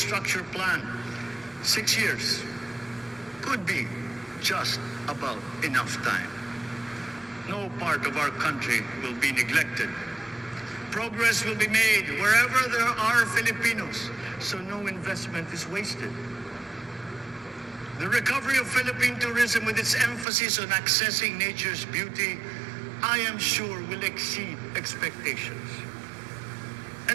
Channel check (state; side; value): drops out; left; at 20.2 s